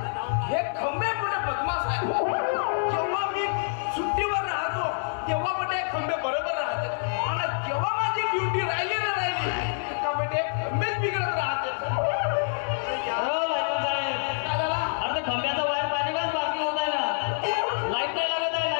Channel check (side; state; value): right; silent; 60 dB below the other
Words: हे खंबे कुठे बदमाश आहे. जेव्हा मी सुट्टीवर राहतो तेव्हा म्हणजे खंबे बरोबर राहते, आणि जेव्हा माझी ड्युटी राहिली ना का म्हणजे खंबेच बिघडत राहते. अरे खंब्याचा वायर पाणी काच बाकी होत आहे ना, लाईट नाही लागत आहे.